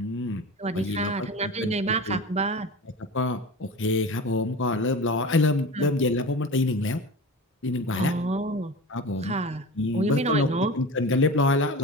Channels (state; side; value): normal; both; correlation 0.31